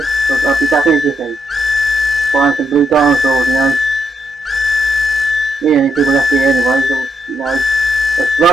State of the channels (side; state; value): both; normal; correlation 0.79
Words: because I'll be back in a jiffy. Buying some blue dinosaurs, you know. The only people left here anyway, so, you know, let's